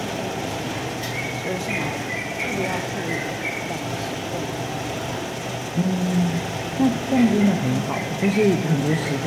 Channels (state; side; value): identical; both; correlation 1.00